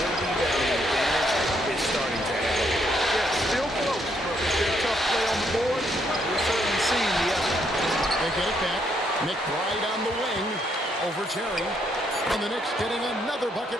rebounding advantage is starting to add up. Yeah, still close, but with their tough play on the board, we're certainly seeing the effort. They get it back. McBride on the wing over Terry. And the Knicks getting another bucket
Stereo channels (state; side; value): normal; both; correlation 0.73